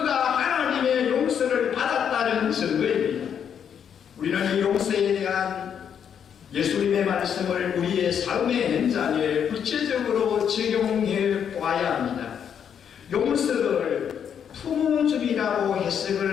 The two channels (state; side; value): quieter; right; 8.2 dB